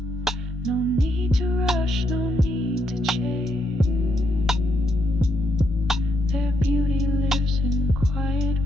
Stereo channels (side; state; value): both; normal; correlation 0.78